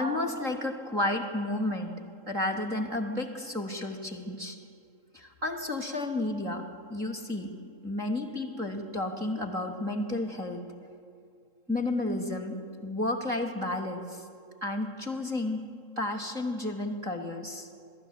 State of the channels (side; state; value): left; late; 3.7 ms